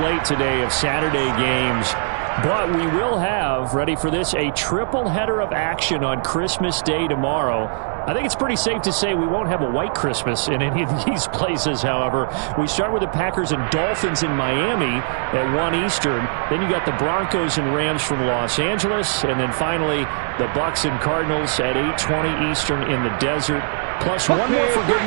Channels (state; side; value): silent; left; digital silence